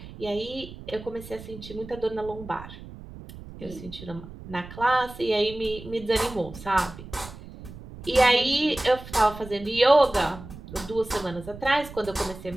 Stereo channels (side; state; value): right; noise; rumble, 15 dB below the sound